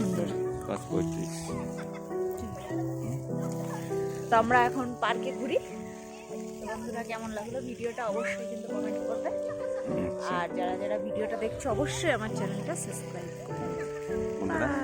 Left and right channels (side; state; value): both; identical; correlation 1.00